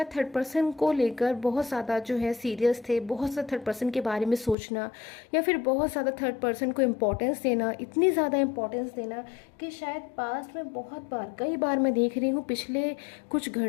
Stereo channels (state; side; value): drops out; right; at 4.5 s